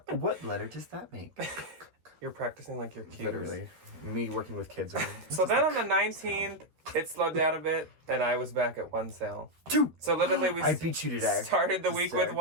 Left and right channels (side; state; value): left; late; 13 ms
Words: What letter does that make? You're practicing like your cues. Literally. Me working with kids again. So then on the 19th, it slowed down a bit, and I was back at one sale. 2! So literally I beat you today. Started the week with